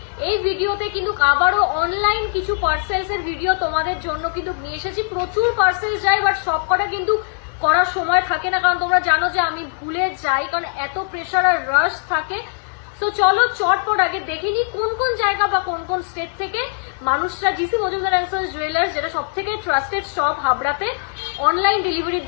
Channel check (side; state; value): right; silent; digital silence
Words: এই ভিডিওতে কিন্তু আবারও অনলাইন কিছু পার্সেলস এর ভিডিও তোমাদের জন্য কিন্তু নিয়ে এসেছি। প্রচুর পার্সেল যায়, বাট সবকটা কিন্তু করার সময় থাকে না, কারণ তোমরা জানো যে আমি ভুলে যাই, কারণ এত প্রেশার আর রাশ থাকে। তো চলো চটপট আগে দেখে নি কোন কোন জায়গা বা কোন কোন স্টেট থেকে মানুষরা GC Majumdar and sons jewellers, যেটা সব থেকে ট্রাস্টেড শপ হাবড়াতে, অনলাইন ডেলিভারির